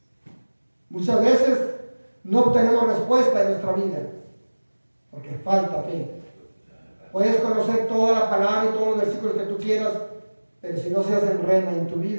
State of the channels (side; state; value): both; inverted; correlation -1.00